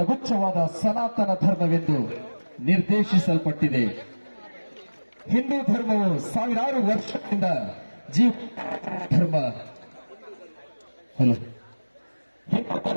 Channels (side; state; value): both; inverted; correlation -1.00